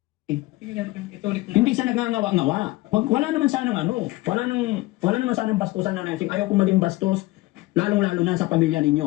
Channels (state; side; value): quieter; right; 19.7 dB